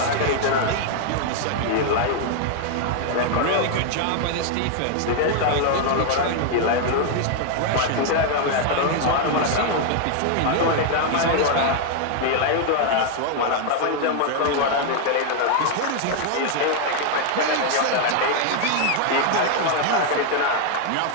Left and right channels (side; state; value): both; different; correlation 0.00